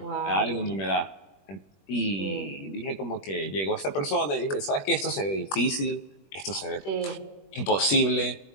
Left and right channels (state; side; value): late; right; 21 ms